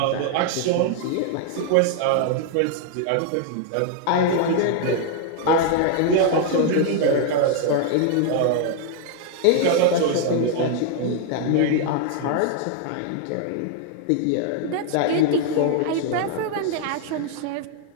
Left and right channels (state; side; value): different; both; correlation 0.00